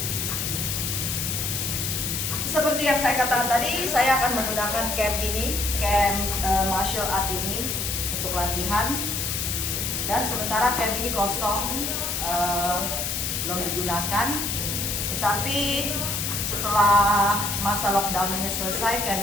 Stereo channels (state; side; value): noise; left; hiss, 1 dB below the sound